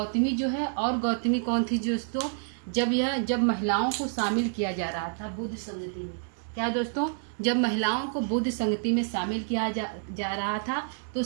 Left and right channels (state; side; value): silent; left; digital silence